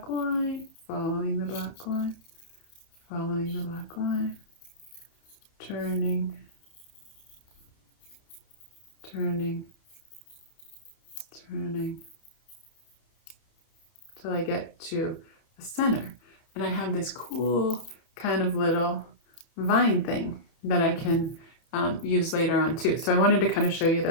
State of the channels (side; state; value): right; late; 30 ms